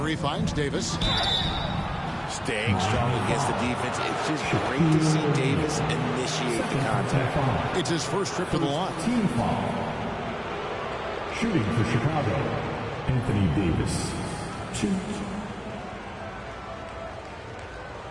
finds Davis. Staying strong against the defense. It's just great to see Davis initiate the contact. It's his first trip to the line. Team foul. Shooting for Chicago, Anthony Davis. 2.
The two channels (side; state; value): both; identical; correlation 1.00